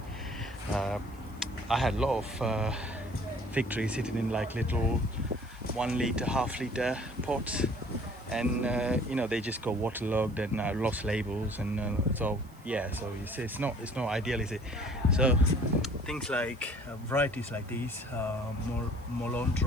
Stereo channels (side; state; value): right; noise; hiss, 27 dB below the sound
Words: I had a lot of fig trees sitting in like little 1 liter, half-liter pots, and you know, they just got waterlogged and lost labels, and so yeah, so you see, it's not ideal, is it? So things like varieties like these,